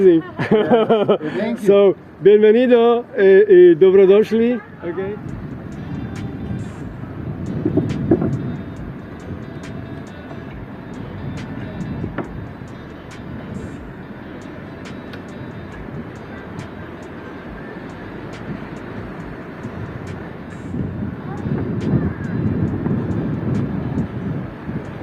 Thank you. So, bienvenido, dobrodošli. Okay.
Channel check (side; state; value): both; identical; correlation 1.00